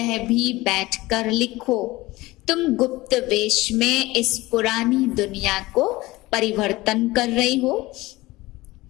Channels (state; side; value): quieter; right; 19.7 dB